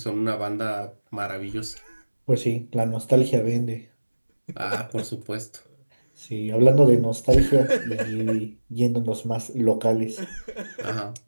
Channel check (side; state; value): both; inverted; correlation -1.00